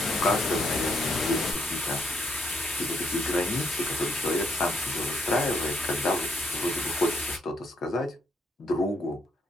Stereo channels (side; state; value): both; normal; correlation 0.74